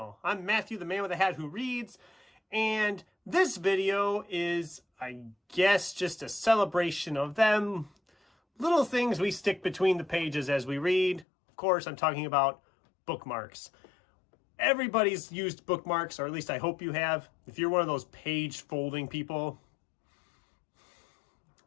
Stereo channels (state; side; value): drops out; right; at 11.2 s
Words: I'm Matthew, the man with a hat who reads, and this video is, I guess, just a celebration of them little things we stick between the pages as we read. Of course, I'm talking about bookmarks. Everybody's used bookmarks, or at least I hope you have. If you're one of those page folding people,